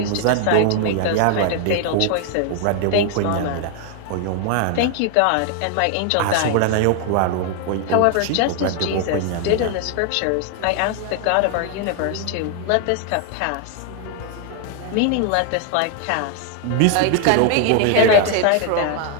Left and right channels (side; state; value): both; different; correlation 0.00